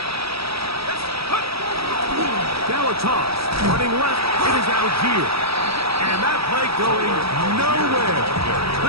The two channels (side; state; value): left; late; 0.77 ms